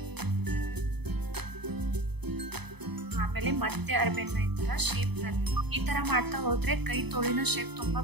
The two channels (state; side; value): late; left; 0.98 ms